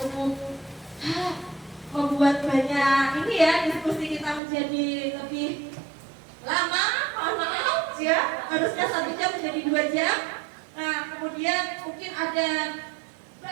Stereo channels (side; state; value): left; drops out; at 4.4 s